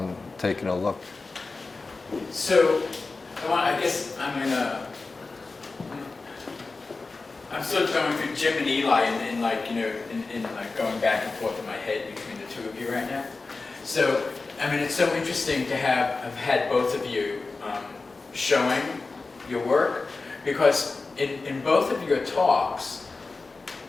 taking a look. So, I guess I'm sort of going through Jim and Eli and like, you know, in like going back and forth in my head between the two of you right now. So, I mean, it's so interesting to have had both of you showing your work, because in both of your talks,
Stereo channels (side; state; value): right; quieter; 3.8 dB